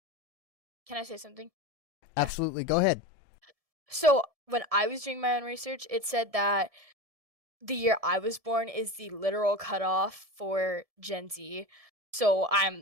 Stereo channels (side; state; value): left; late; 1.7 ms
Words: I say something? Absolutely, go ahead. So when I was doing my own research, it said that the year I was born is the literal cutoff for Gen Z. So